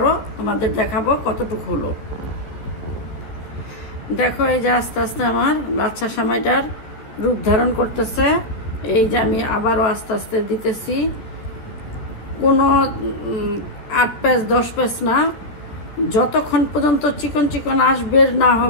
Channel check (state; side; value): late; right; 13 ms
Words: তোমাদের দেখাবো কতটুকু হলো। দেখো এই যে আস্তে আস্তে আমার লাচ্ছা সেমাইটার রূপ ধারণ করতেছে। এই যে আমি আবারও আস্তে আস্তে দিতেছি। কোনো 8 প্যাচ 10 প্যাচ না, যতক্ষণ পর্যন্ত চিকন চিকন বের না